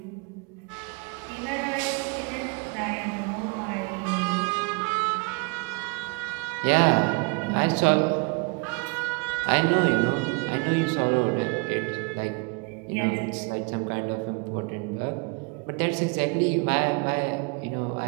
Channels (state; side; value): quieter; left; 31.1 dB